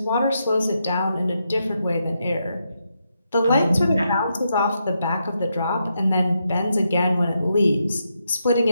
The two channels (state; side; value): inverted; both; correlation -0.82